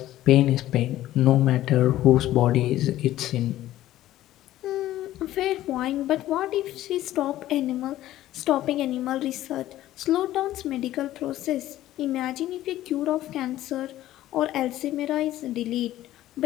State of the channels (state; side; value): quieter; right; 14.2 dB